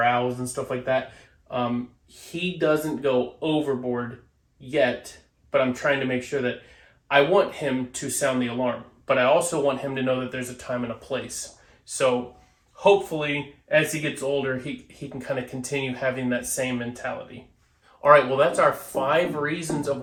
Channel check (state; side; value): identical; both; correlation 1.00